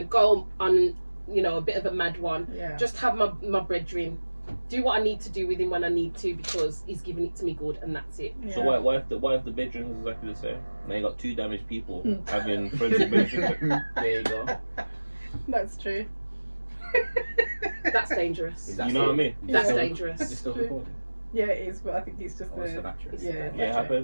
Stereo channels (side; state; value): both; inverted; correlation -1.00